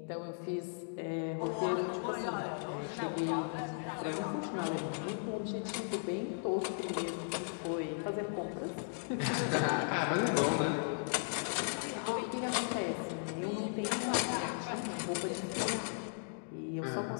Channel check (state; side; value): silent; right; digital silence